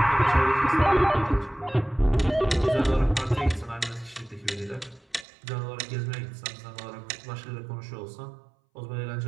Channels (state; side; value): drops out; left; at 5.2 s